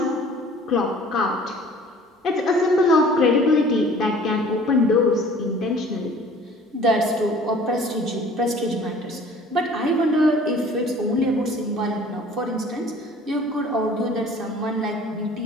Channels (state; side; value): normal; both; correlation 0.50